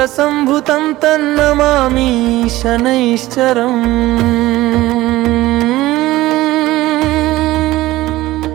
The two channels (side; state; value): left; quieter; 17.3 dB